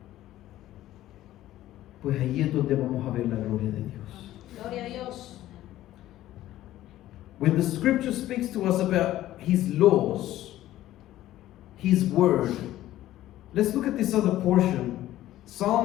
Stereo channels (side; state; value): right; quieter; 14.3 dB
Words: pues ahí es donde vamos a ver la gloria de Dios. Gloria a Dios. When the scripture speaks to us about His laws, His word, let's look at this other portion.